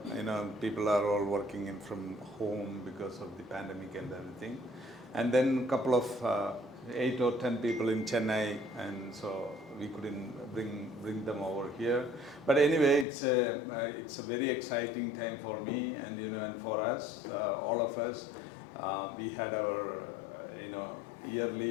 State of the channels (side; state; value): right; drops out; at 13.1 s